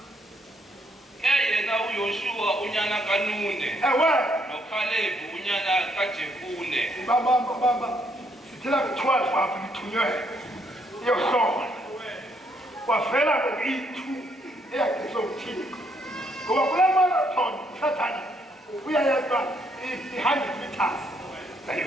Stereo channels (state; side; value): normal; both; correlation 0.72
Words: 6 yena uYoshua unyana kaNune noKhalebi unyana kaJefune bamba Tell me 12 after you to your son. Was fella to eat 2 acres of tea. Go up a marathon, Satan. We are behind the task.